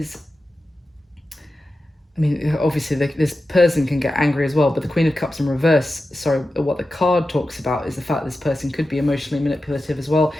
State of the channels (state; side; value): normal; both; correlation 0.92